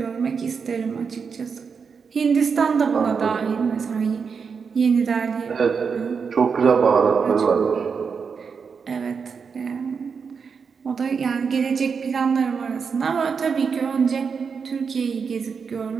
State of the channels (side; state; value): left; quieter; 5.8 dB